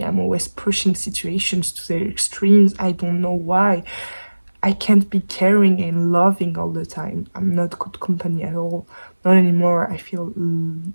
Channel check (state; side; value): inverted; both; correlation -1.00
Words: I'm always pushing situations to their extremes. I don't know why. I can't be caring and loving all the time. I'm not good company at all. Not anymore. I